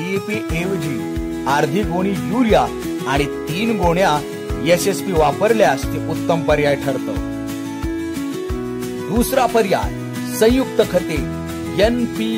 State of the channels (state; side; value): identical; both; correlation 1.00